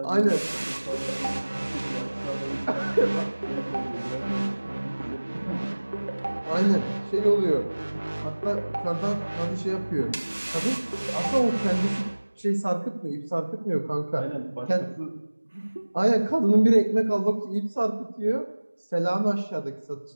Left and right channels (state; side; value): inverted; both; correlation -1.00